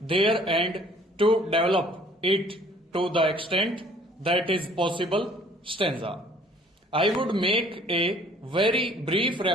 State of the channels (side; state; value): both; normal; correlation 0.56